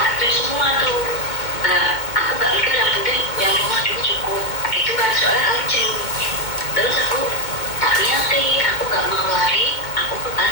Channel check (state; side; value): late; right; 2.2 ms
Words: tak semua tuh. Aku gak mikir, yang penting yang rumah dulu cukup gitu kan, soalnya urgent. Terus aku tak niati, aku gak mau lari, aku ke